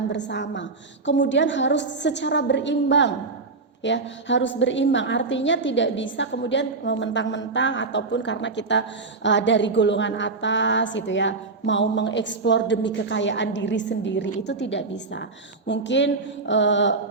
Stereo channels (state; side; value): quieter; left; 3.9 dB